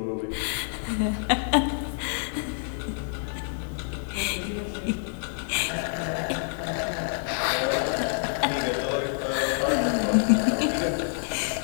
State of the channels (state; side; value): silent; right; 60 dB below the other